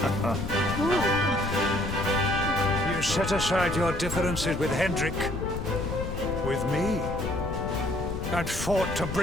You set aside your differences with Hendrik, with me, and fought to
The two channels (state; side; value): noise; left; rumble, 6 dB below the sound